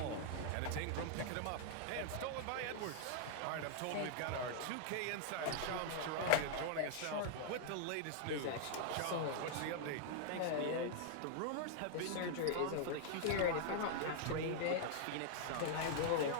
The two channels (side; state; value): both; different; correlation -0.01